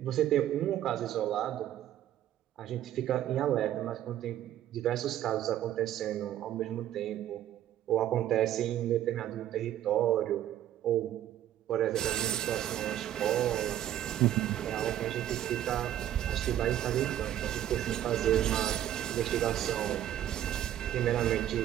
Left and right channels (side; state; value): left; quieter; 11.8 dB